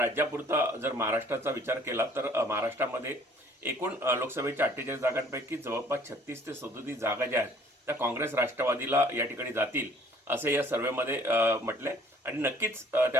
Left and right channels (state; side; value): normal; both; correlation 0.57